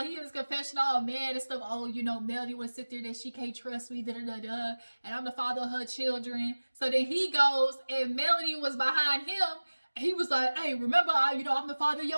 he in his confession, all mad and stuff. Oh, Melody would sit there that she can't trust me, da-da-da-da. And I'm the father of her children. So then he goes, and Melody was behind him. And he was like, hey, remember, I'm the father of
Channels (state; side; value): inverted; both; correlation -1.00